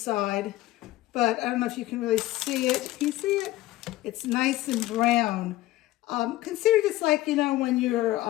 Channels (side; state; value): right; quieter; 16.6 dB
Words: but I don't know if you can really see it. Can you see it? It's nice and brown. Consider this like, you know, when you're